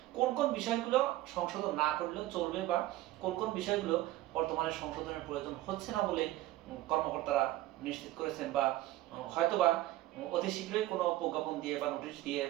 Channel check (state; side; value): quieter; left; 16.1 dB